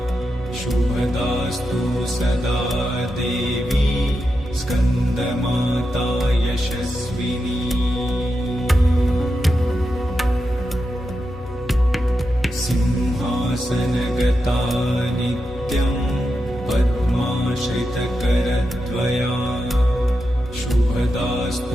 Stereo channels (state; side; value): normal; both; correlation 0.87